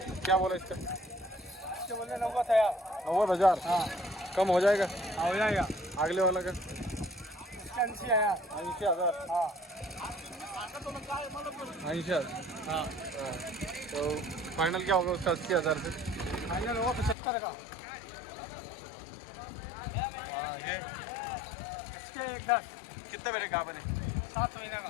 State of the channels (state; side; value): drops out; right; at 17.2 s